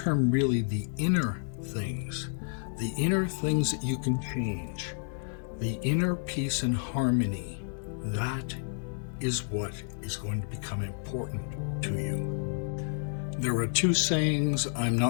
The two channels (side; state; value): right; silent; digital silence